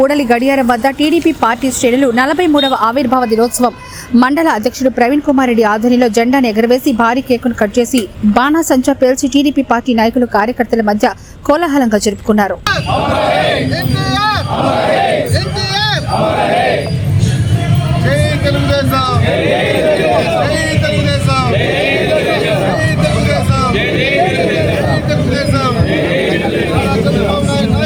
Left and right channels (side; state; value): both; identical; correlation 1.00